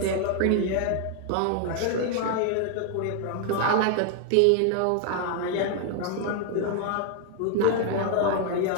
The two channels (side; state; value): both; different; correlation 0.00